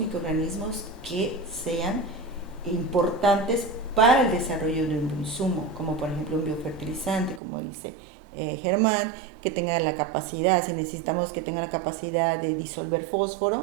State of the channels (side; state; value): left; drops out; at 7.4 s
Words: que sean importantes para el desarrollo de un insumo, como por ejemplo un biofertilizante, como dice Germán, que tenga la capacidad, si necesitamos que tenga la capacidad de disolver fósforo.